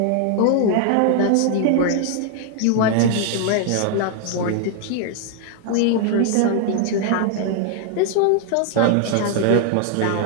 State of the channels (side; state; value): both; different; correlation 0.00